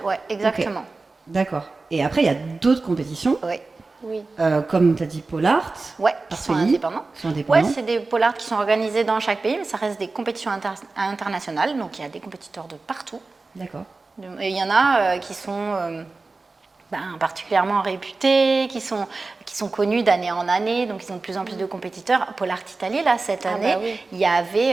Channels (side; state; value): left; quieter; 3.7 dB